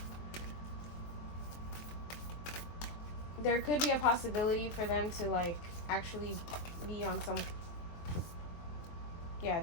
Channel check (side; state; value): right; late; 23 ms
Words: there could be a possibility for them to, like, actually be on some... Yeah,